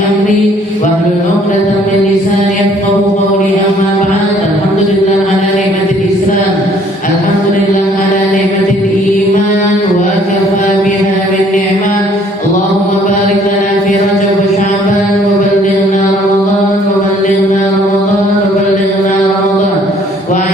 wahlul 'uqdatam min lisani yafqahu qawli. Amma ba'd. Alhamdulillah ala ni'matil Islam, alhamdulillah ala ni'matil iman wa kafa biha min ni'mah. Allahumma barik lana fi Rajab wa Sya'ban wa ballighna Ramadan wa ballighna Ramadan wa ballighna Ramadan wa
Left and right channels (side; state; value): both; normal; correlation 0.60